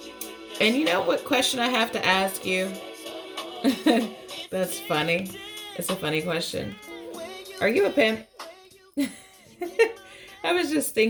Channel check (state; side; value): identical; both; correlation 1.00